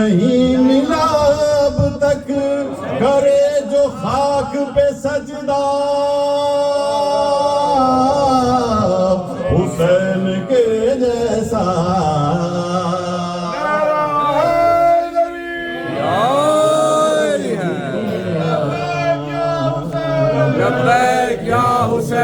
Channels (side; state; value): both; identical; correlation 1.00